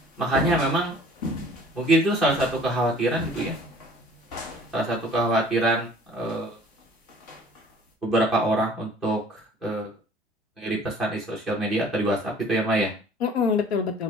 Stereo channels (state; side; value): normal; both; correlation 0.51